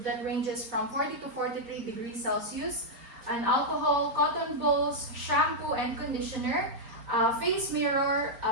that ranges from 40 to 43 degrees Celsius, an alcohol, cotton balls, shampoo and conditioner, face mirror,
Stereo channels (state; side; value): late; left; 4.3 ms